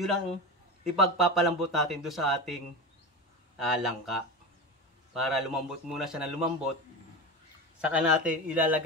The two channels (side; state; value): both; normal; correlation 0.24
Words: ang ipagpapalambot natin doon sa ating langka. Para lumambot muna siya na lumambot. Saka natin